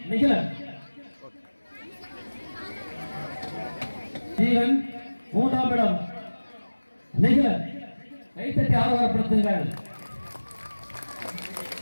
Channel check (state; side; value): inverted; both; correlation -1.00